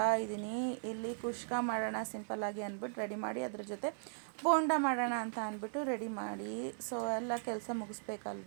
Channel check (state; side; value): silent; left; 53 dB below the other